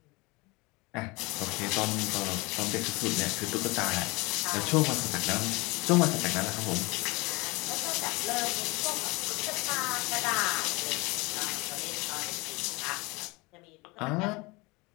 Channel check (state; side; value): quieter; right; 25.1 dB